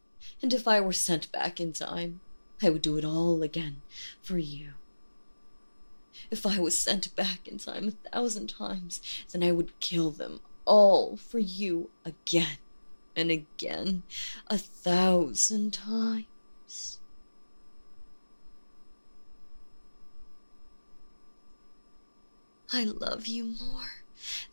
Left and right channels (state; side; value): inverted; both; correlation -1.00